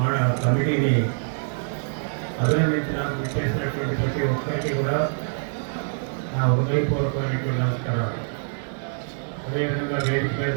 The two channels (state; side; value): silent; left; 62 dB below the other